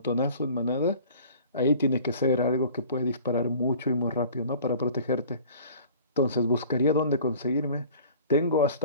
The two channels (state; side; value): inverted; both; correlation -0.47